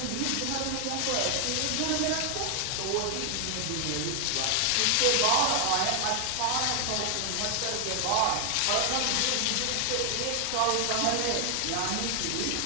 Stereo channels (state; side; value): different; both; correlation 0.00